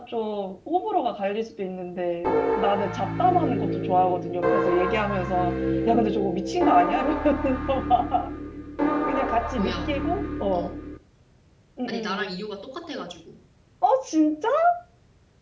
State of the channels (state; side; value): identical; both; correlation 1.00